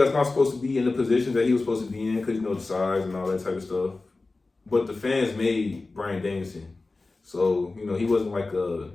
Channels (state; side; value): quieter; right; 3.5 dB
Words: not supposed to be in the position that he was supposed to be in because, the size and all that type of stuff. But the fans made Bryan Danielson. So, he wasn't like a